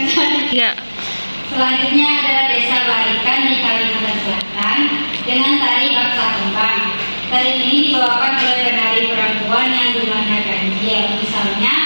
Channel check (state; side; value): inverted; both; correlation -1.00